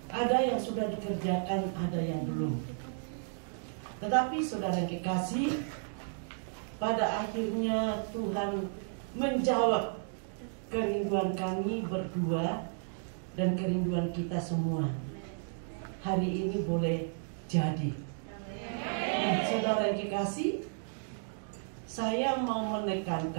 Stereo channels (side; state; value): left; silent; digital silence